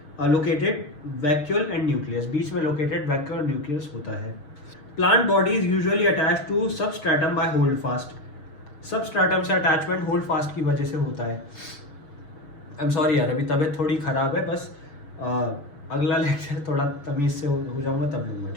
located vacuole and nucleus. बीच में located vacuole और nucleus होता है। Plant body is usually attached to substratum by holdfast. Substratum से attachment holdfast की वजह से होता है। I'm sorry यार, अभी तबीयत थोड़ी ख़राब है, बस अगला लेक्चर थोड़ा तमीज़ से हो जाऊँगा तब लूँगा,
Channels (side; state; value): right; late; 6.3 ms